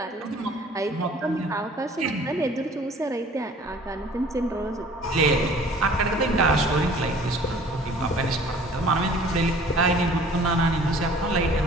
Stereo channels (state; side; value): normal; both; correlation 0.50